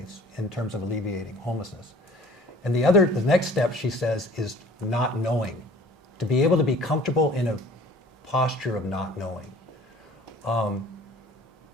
in terms of alleviating homelessness. And the next step, she says, is not knowing. To be able to be comfortable in a posture of not knowing.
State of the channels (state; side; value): normal; both; correlation 0.50